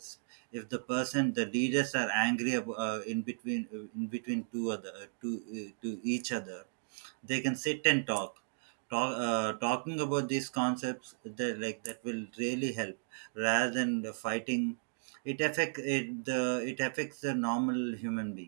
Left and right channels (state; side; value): silent; left; digital silence